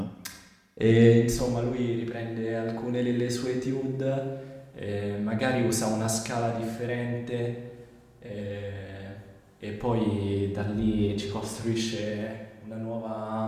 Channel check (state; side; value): identical; both; correlation 1.00